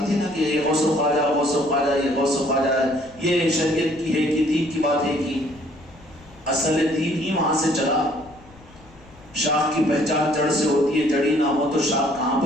تھی نا کہ یہ غوث و خواجہ، غوث و خواجہ، یہ غوث و خواجہ ہے، یہ شریعت کی ہے کہ دین کی بات ہے کہ اصل دین ہی وہاں سے چلا. شاخ کی پہچان جڑ سے ہوتی ہے، جڑی نہ ہو تو شاخ کہاں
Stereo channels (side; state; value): left; noise; rumble, 25 dB below the sound